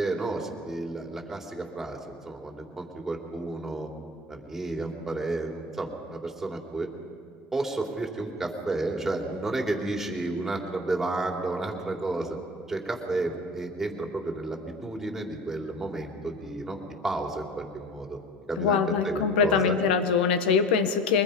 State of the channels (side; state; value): both; normal; correlation 0.40